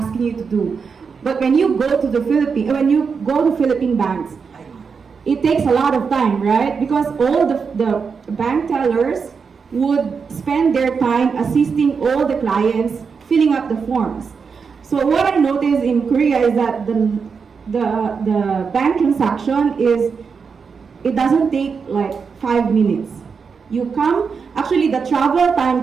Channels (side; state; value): left; quieter; 5.6 dB